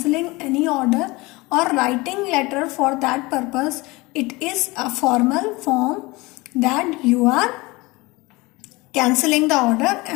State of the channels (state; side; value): quieter; right; 23.1 dB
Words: any order or writing letter for that purpose, it is a formal form that you are cancelling the order